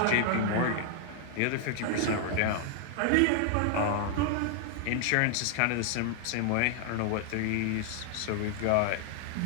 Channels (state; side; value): different; both; correlation 0.00